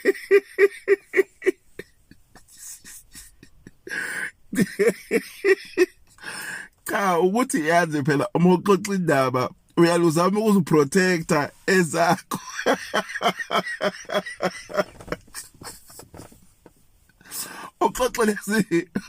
Cha ukuthi yazi phela uma uxoxa indaba uyaluzama ukuziprotecta ezakho. Uxoxe lezi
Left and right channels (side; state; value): both; identical; correlation 1.00